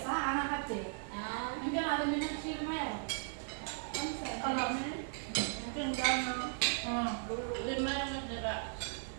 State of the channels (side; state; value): left; silent; 53 dB below the other